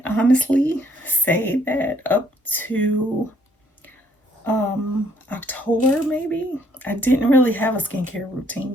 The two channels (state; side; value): normal; both; correlation 0.66